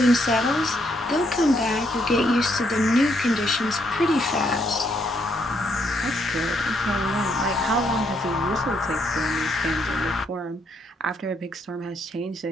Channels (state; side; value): normal; both; correlation 0.74